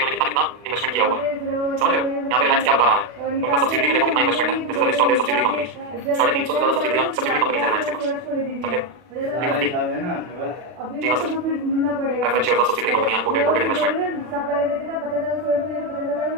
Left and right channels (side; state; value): left; late; 40 ms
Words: इन्होंने कितना कितना इन्वेस्टमेंट किया हुआ है, समझ रहे हो? यहाँ पे रिलायंस क्या बता रहा है? उनका सब्सिडरी में देखो कितना इन्वेस्टमेंट है, this is the list of their subsidiary companies, 350 से ज्यादा सब्सिडरी कंपनीज है रिलायंस के पास, समझे? जी हाँ sir, preference shares of subsidiary company, unquoted, quoted investment.